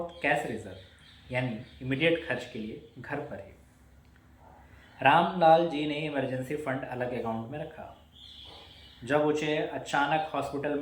कैश रिजर्व यानी इमीडिएट खर्च के लिए घर पर ही। रामलाल जी ने इमरजेंसी फंड अलग अकाउंट में रखा। जब उसे अचानक हॉस्पिटल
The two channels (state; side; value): identical; both; correlation 1.00